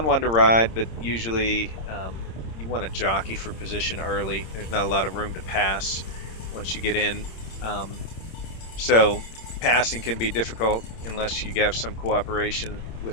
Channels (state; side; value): late; right; 26 ms